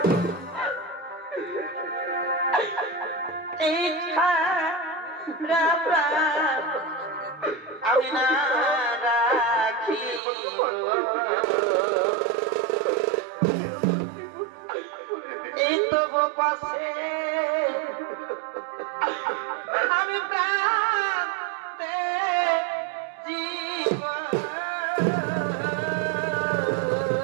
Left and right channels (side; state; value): left; drops out; at 10.2 s